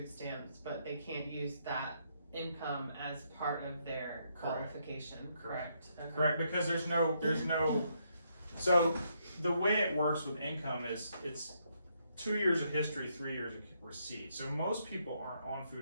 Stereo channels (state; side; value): inverted; both; correlation -0.75